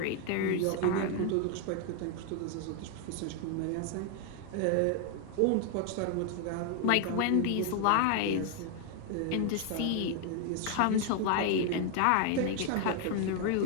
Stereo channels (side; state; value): both; different; correlation 0.00